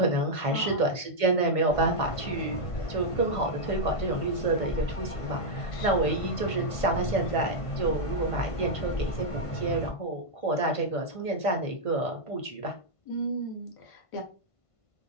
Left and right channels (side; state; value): right; late; 1.5 ms